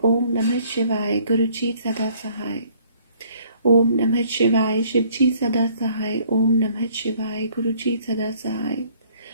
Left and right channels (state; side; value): inverted; both; correlation -0.61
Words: ओम नमः शिवाय, गुरु जी सदा सहाय। ओम नमः शिवाय, शिव जी सदा सहाय। ओम नमः शिवाय, गुरु जी सदा सहाय।